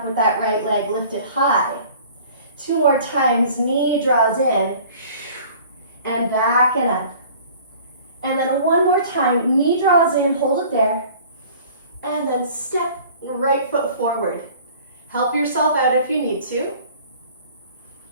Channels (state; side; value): inverted; both; correlation -0.48